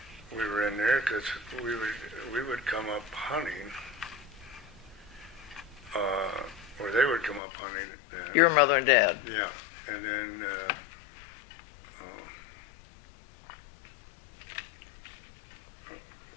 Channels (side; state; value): right; drops out; at 7.4 s